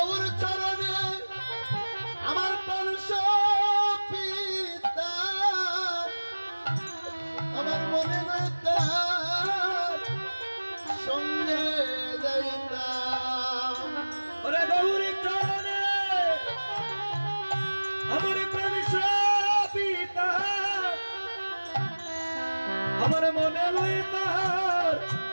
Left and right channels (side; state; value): both; inverted; correlation -1.00